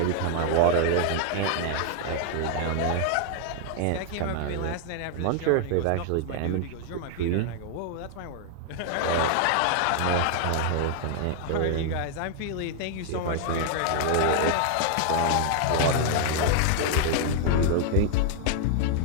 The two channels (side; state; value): both; different; correlation 0.00